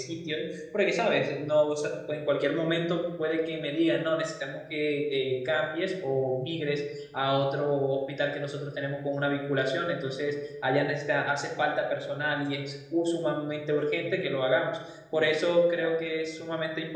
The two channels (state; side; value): identical; both; correlation 1.00